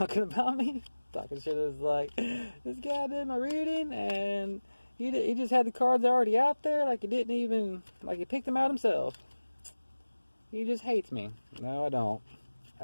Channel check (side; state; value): both; inverted; correlation -1.00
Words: about me. Talking shit is like, this guy did my reading and he just had the cards already out there. Like, he didn't even, like, he picked them out himself. He just hates me. No, I don't.